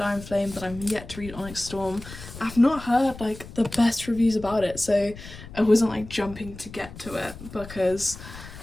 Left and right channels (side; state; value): left; noise; rumble, 15 dB below the sound